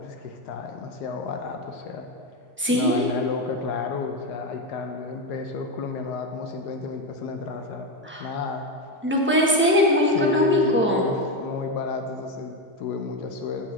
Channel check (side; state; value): both; normal; correlation 0.11